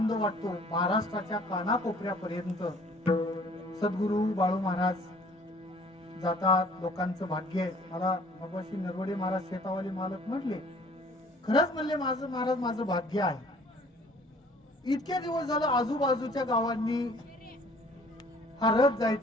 वाटतो. महाराष्ट्राच्या कानाकोपऱ्यापर्यंत सद्गुरू बाळू महाराज जातात. लोकांचं भाग्य आहे. मला भगवान नरवडे महाराज शेतावाले मालक म्हटले, खरंच म्हणले माझं महाराज माझं भाग्य आहे. इतके दिवस झालं आजूबाजूच्या गावांनी हा रथ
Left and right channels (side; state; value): both; normal; correlation 0.55